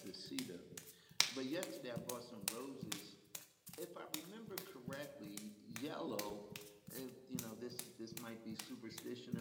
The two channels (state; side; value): identical; both; correlation 1.00